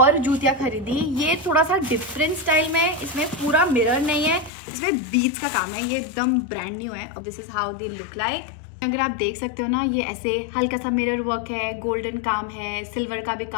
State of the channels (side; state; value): right; drops out; at 4.5 s